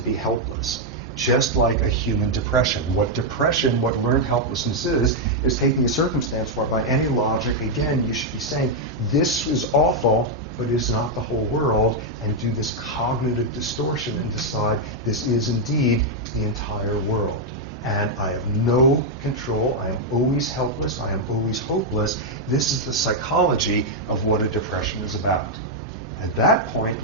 helpless. Just like a human depression. What learned helplessness is taking a circumstance where by any logic, again, you should be saying, this is awful, but it's not the whole world, and do this cognitive distortion and decide this is indeed the entire world. And I have no control, I am always helpless, I am always hopeless. This is the psychology of what a depression is about. At that point,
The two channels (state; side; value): normal; both; correlation -0.02